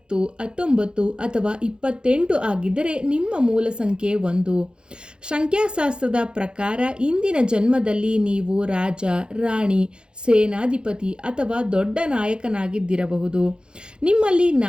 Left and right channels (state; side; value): late; left; 0.050 ms